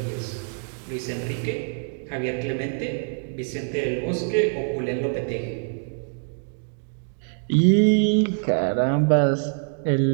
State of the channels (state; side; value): silent; left; 62 dB below the other